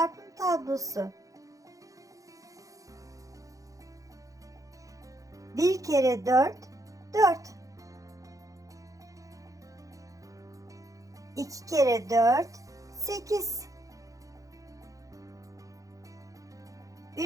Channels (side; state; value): left; late; 0.16 ms